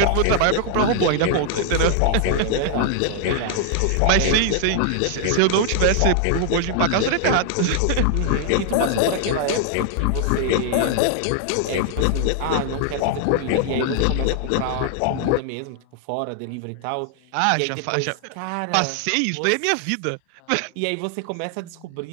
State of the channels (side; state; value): both; different; correlation 0.00